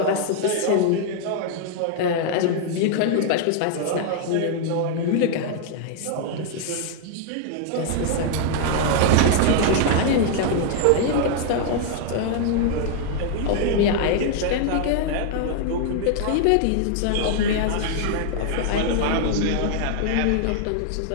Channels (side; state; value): both; different; correlation 0.00